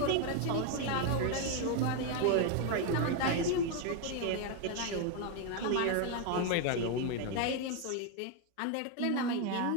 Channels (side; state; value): both; different; correlation 0.01